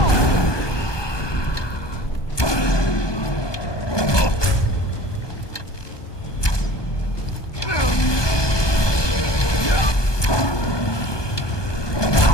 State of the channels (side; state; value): right; late; 1.2 ms